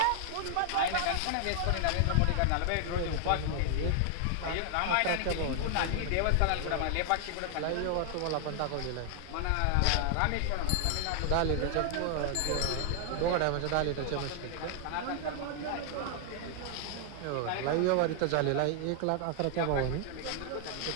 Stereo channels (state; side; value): different; both; correlation 0.00